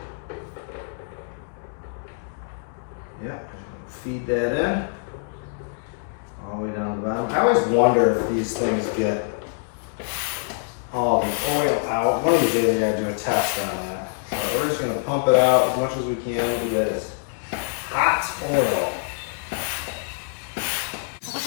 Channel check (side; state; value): right; silent; digital silence